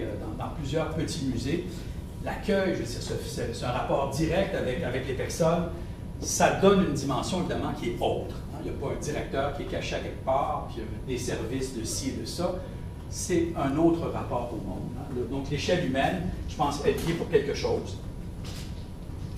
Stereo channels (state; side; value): identical; both; correlation 1.00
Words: dans plusieurs petits musées. L'accueil, je veux dire, c'est un rapport direct avec les personnes. Ça donne une dimension, évidemment, qui est autre. Hein. Il n'y a pas un directeur qui est caché à quelque part, puis des services de ci et de ça. C'est un autre rapport au monde. Hein. Donc, l'échelle humaine, je pense, est liée pour quelque chose.